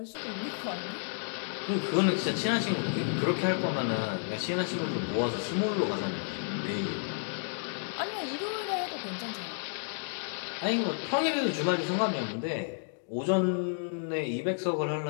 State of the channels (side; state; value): right; silent; digital silence